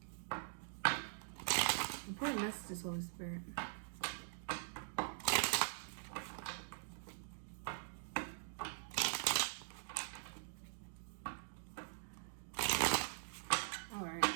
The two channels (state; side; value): silent; left; digital silence